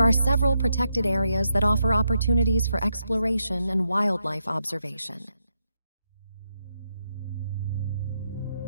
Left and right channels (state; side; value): inverted; both; correlation -0.82